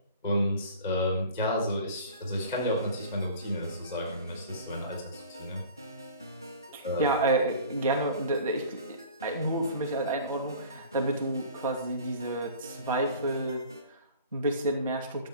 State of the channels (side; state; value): both; inverted; correlation -0.44